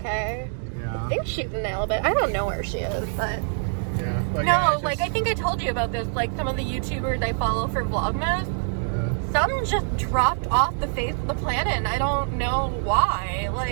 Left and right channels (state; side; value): silent; left; 62 dB below the other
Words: Yeah. I think she's in Alabama. I don't know where she is, but yeah. But no, yeah, like I think I told you about this. Like some of the YouTubers I follow for Vlogmas, some just dropped off the face of the planet, and I don't know why.